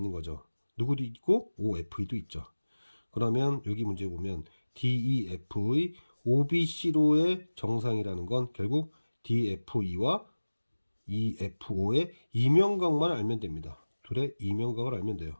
거죠. 누구도 있고 OFE도 있죠. 그러면 여기 문제 보면 DEF의 OBC로의 정상이라는 건 결국 DFE와 EFO의 이면각만 알면 됩니다. 둘의 이면각을 알면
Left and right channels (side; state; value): both; inverted; correlation -1.00